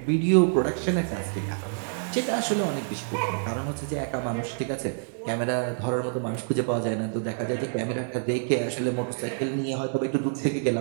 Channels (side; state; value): left; silent; 60 dB below the other